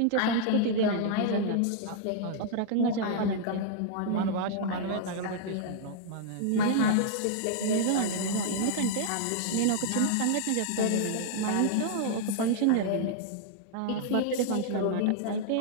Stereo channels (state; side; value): different; both; correlation -0.01